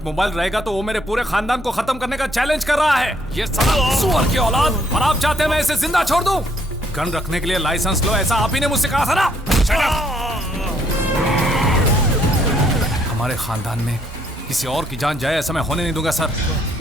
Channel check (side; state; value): both; normal; correlation 0.68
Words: मोबाइल रहेगा तो वो मेरे पूरे खानदान को खत्म करने का चैलेंज कर रहा है। ये साला सुअर की औलाद, और आप चाहते हैं मैं इसे जिंदा छोड़ दूं? गन रखने के लिए लाइसेंस लो, ऐसा आप ही ने मुझसे कहा था ना? हमारे खानदान में किसी और की जान जाए ऐसा मैं होने नहीं दूंगा सर।